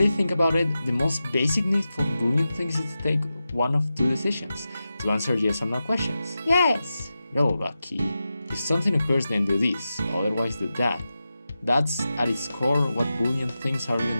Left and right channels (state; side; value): inverted; both; correlation -0.92